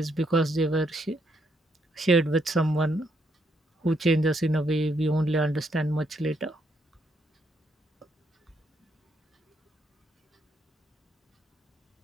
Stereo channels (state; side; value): normal; both; correlation 0.75